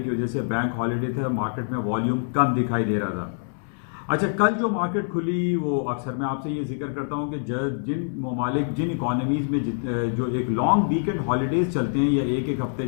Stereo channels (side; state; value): right; silent; 62 dB below the other